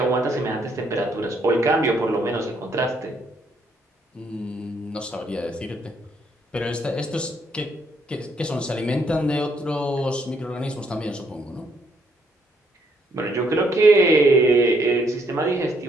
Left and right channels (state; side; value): normal; both; correlation 0.71